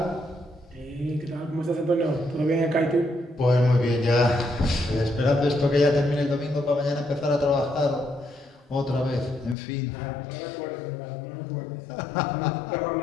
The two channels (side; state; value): right; drops out; at 9.6 s